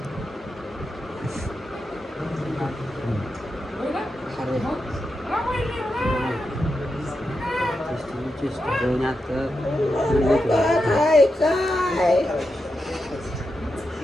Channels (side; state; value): both; normal; correlation 0.87